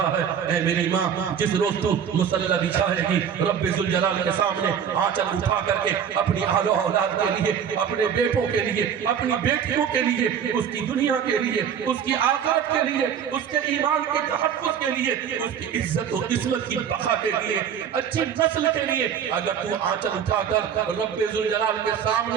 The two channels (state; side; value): quieter; left; 8.1 dB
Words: ہے۔ اے میری ماں، جس روز تو مصلی بچھائے گی رب ذوالجلال کے سامنے آنچل اٹھا کر کے اپنی اہل و اولاد کے لیے، اپنے بیٹوں کے لیے، اپنی بیٹیوں کے لیے، اس کی دنیا کے لیے، اس کی آخرت کے لیے، اس کے ایمان کے تحفظ کے لیے، اس کی عزت و عصمت کی بقا کے لیے، اچھی نسل کے لیے اگر تو آنچل اٹھا کر رب ذوالجلال کے